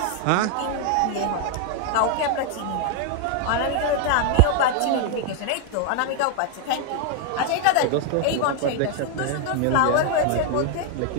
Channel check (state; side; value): different; both; correlation 0.00